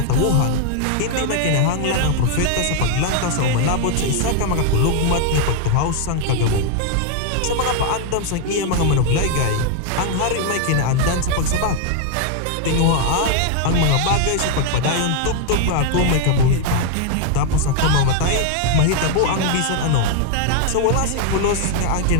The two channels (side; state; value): both; different; correlation 0.00